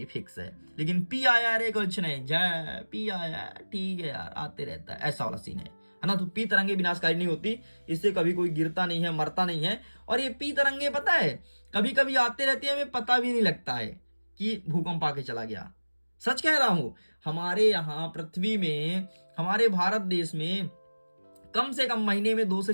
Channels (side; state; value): both; inverted; correlation -1.00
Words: फिक्स है। लेकिन पी आया रे कुछ नहीं, जय पी आया ठीक है यार, आते रहता है, ऐसा वाला सीन है ना। तो पी तरंगे विनाशकारी नहीं होती, इससे कभी कोई गिरता नहीं है, मरता नहीं है। और ये पी तरंगे पता है कभी कभी आते रहते हैं, हमें पता भी नहीं लगता है कि भूकंप आके चला गया। सच कह रहा हूं, हमारे यहाँ पृथ्वी में, हमारे भारत देश में कम से कम महीने में 2 से